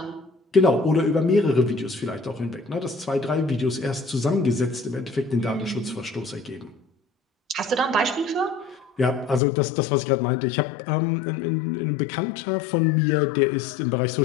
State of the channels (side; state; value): right; drops out; at 9.4 s